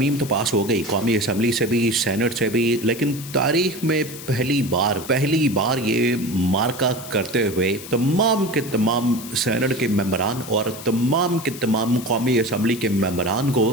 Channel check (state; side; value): noise; left; hiss, 13 dB below the sound